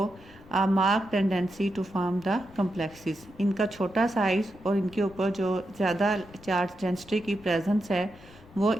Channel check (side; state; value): left; noise; rumble, 22 dB below the sound